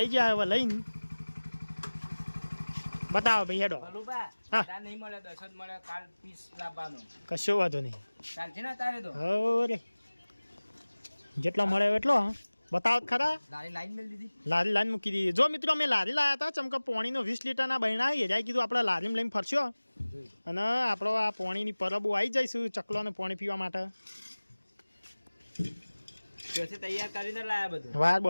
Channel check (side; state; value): both; inverted; correlation -1.00